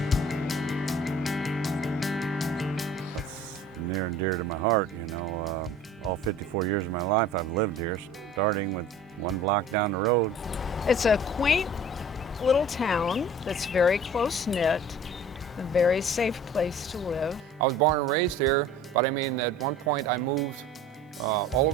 It's near and dear to my heart, you know. All 54 years of my life I've lived here, starting with one block down the road. It's a quaint little town that's very close-knit, a very safe place to live. I was born and raised here, but I mean, at one point I moved all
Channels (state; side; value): normal; both; correlation 0.45